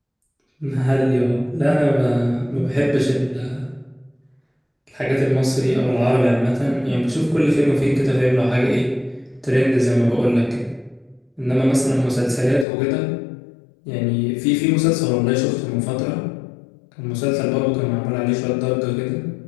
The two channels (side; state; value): right; drops out; at 12.7 s